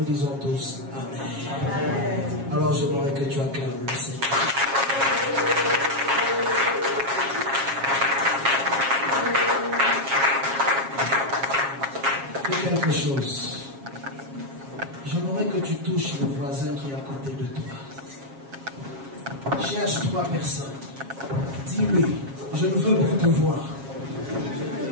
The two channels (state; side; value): late; left; 7.4 ms